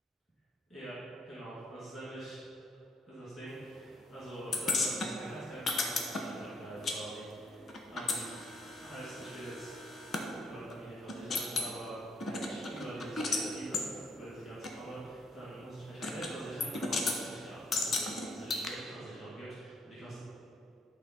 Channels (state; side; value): normal; both; correlation 0.71